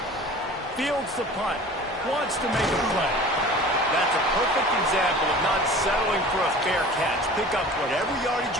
Fields the punt. Wants to make a play. That's a perfect example of not settling for a fair catch. Pick up whatever yardage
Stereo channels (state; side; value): normal; both; correlation 0.42